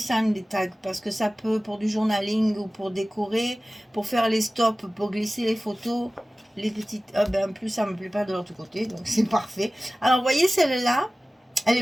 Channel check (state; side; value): normal; both; correlation 0.97